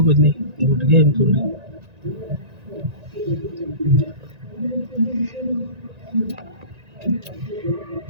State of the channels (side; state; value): left; late; 1.9 ms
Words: कुछ नहीं घुट गया हम थोड़ी